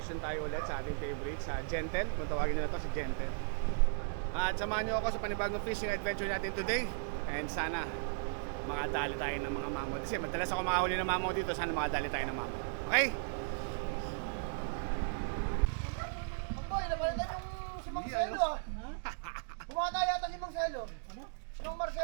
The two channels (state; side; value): silent; left; digital silence